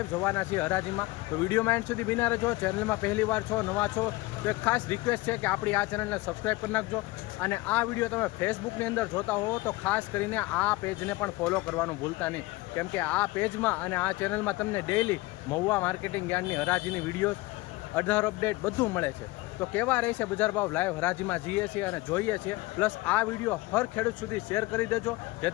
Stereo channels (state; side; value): quieter; right; 20.5 dB